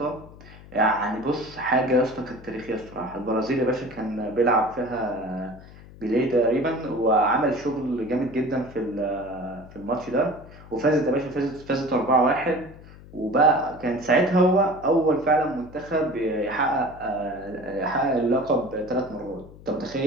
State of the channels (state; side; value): noise; left; hum, 19 dB below the sound